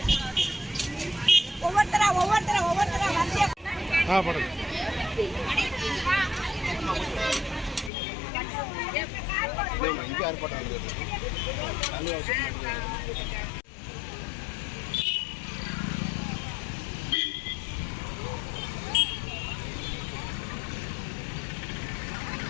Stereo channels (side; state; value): right; drops out; at 7.9 s